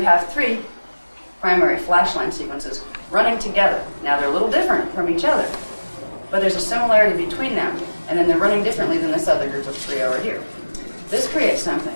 3 primary flash line sequences running together. Now they're a little different from each other, but there's a similarity between them, and then they're running differently than this other group of 3 over here. This creates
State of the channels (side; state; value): both; inverted; correlation -1.00